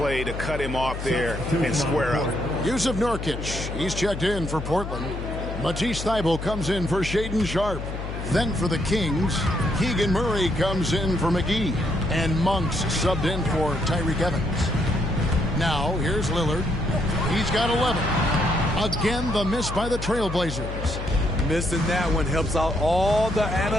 to cut him off there and square up. Yusuf Nurkic, he's checked in for Portland. Matisse Thybulle comes in for Shaedon Sharpe. Then for the Kings, Keegan Murray comes in for McGee. And Monks subbed in for Tyreke Evans. Now, here's Lillard. He's got 11. Again, the miss by the TrailBlazers. Missing that one helps out all the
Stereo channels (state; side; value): noise; left; hum, 7 dB below the sound